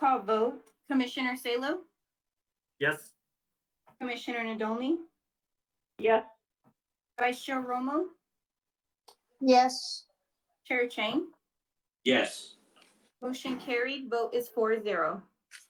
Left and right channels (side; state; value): both; identical; correlation 1.00